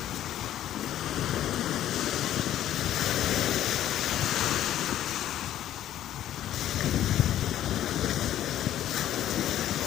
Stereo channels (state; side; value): quieter; right; 12.1 dB